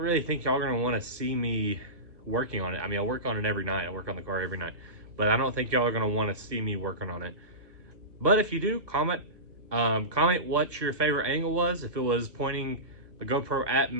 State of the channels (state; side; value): late; left; 1.4 ms